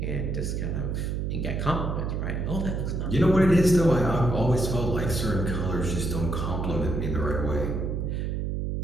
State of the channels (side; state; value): right; noise; hum, 1 dB below the sound